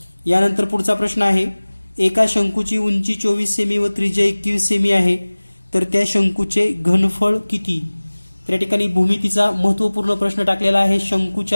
यानंतर पुढचा प्रश्न आहे, एका शंकूची उंची 24 सेमी व त्रिज्या 21 सेमी आहे तर त्या शंकूचे घनफळ किती। तर या ठिकाणी भूमितीचा महत्त्वपूर्ण प्रश्न टाकलेला आहे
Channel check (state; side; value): inverted; both; correlation -1.00